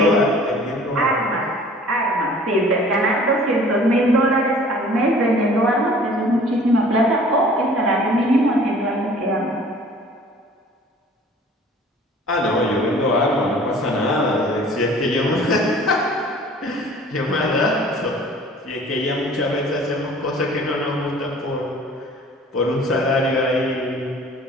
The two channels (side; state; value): both; normal; correlation 0.49